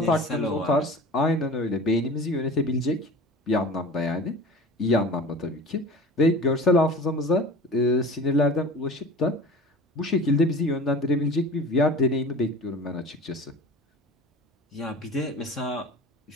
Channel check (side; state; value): both; normal; correlation 0.39